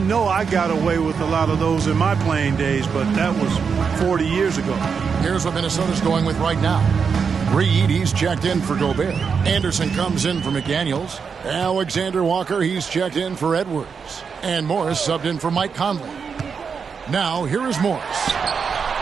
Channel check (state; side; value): quieter; left; 6.0 dB